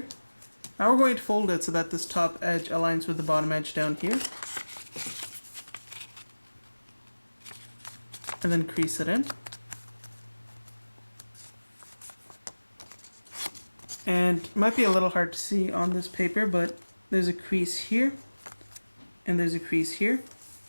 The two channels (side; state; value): both; inverted; correlation -1.00